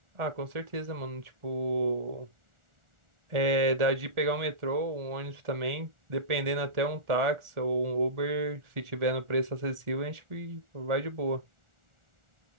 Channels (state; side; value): late; left; 1.4 ms